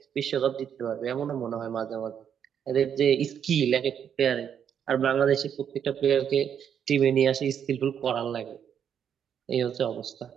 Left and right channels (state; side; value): quieter; left; 8.4 dB